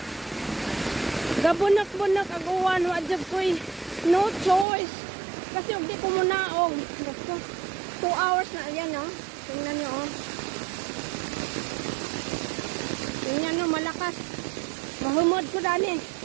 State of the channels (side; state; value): left; drops out; at 4.7 s